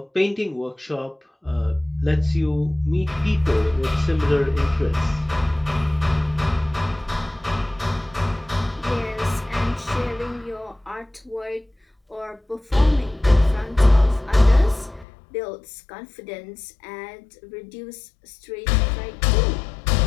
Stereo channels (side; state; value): right; drops out; at 15.1 s